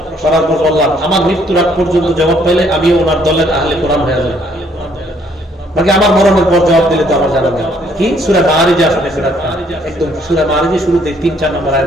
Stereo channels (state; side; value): normal; both; correlation 0.65